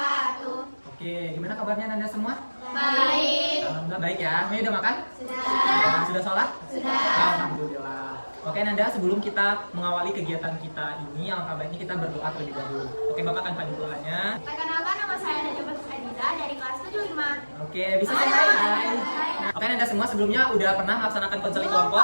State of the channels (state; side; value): inverted; both; correlation -1.00